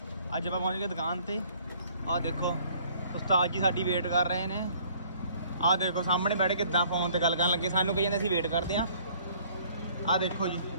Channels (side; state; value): both; inverted; correlation -0.58